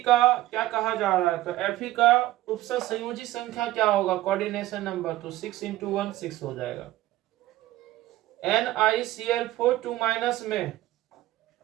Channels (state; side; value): quieter; left; 15.9 dB